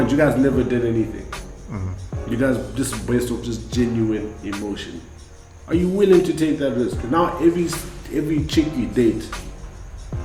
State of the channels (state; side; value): identical; both; correlation 1.00